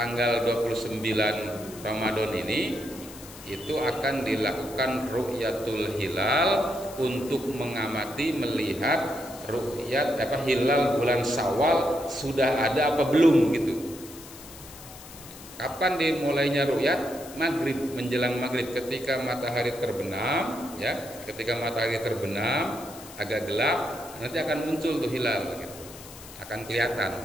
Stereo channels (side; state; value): left; noise; hiss, 17 dB below the sound